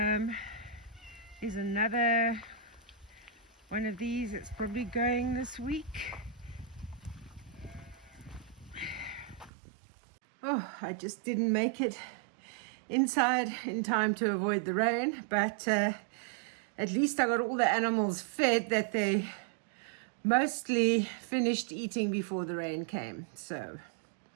There's another one of these that's probably going this week. Oh, I just didn't make it inside in time to avoid the rain, but at least I got all the animals fed that they mostly finished eating before the rain came. So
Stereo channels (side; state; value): left; drops out; at 9.5 s